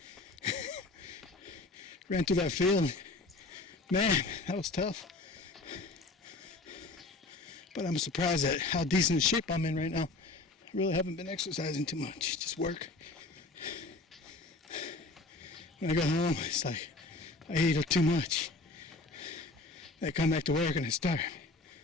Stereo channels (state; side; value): quieter; right; 3.2 dB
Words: Ran through that field. Man, that was tough. But I'm surprised at how decent shape I'm in right now. I really haven't been exercising too much, just work. When I go home, it's like I eat too much. I come back to work and I starve.